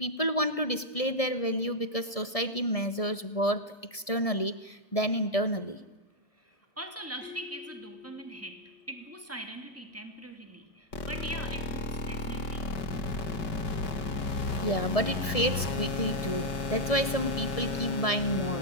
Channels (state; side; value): late; right; 1.7 ms